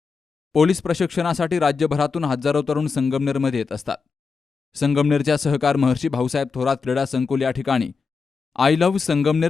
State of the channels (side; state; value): right; quieter; 5.0 dB